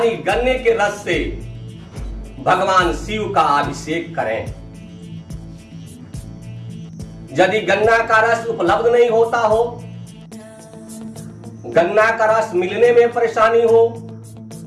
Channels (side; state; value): both; identical; correlation 1.00